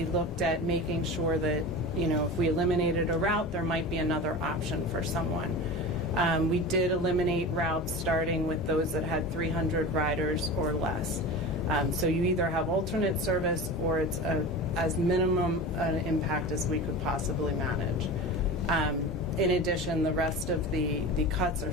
looked at making sure that, if we eliminated a route, there might be another option for someone. We did eliminate routes starting with those that had 300 riders or less. So you either have alternate service or it's as minimum an impact as we could possibly manage. In addition, the rest of the cuts are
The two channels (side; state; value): both; normal; correlation 0.31